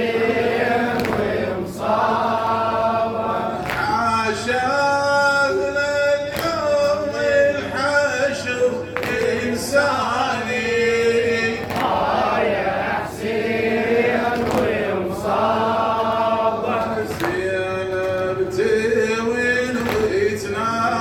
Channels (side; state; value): both; identical; correlation 1.00